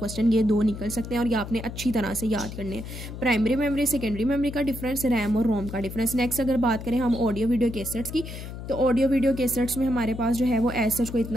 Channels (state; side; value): noise; left; hum, 10 dB below the sound